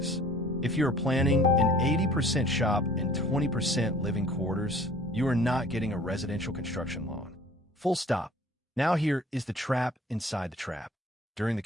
If you are planning an 80% shop and 20% living quarters, you are not getting a residential construction loan. Full stop. Now here is the trap inside the trap. During the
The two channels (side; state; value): both; normal; correlation 0.51